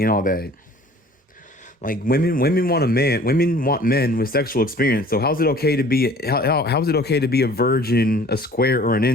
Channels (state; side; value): normal; both; correlation 0.50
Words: all that. Like women want a man. Women want men with sexual experience. So how's it okay to be how's it okay to be a virgin, a square, or an